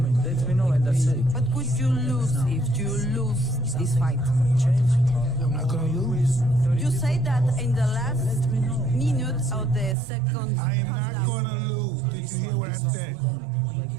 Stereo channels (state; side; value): drops out; left; at 10.0 s